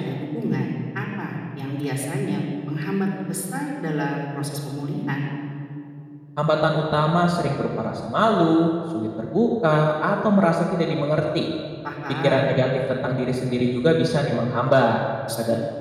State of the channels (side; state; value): both; identical; correlation 1.00